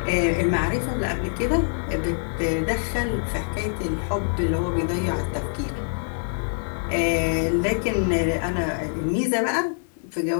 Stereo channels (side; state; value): right; silent; digital silence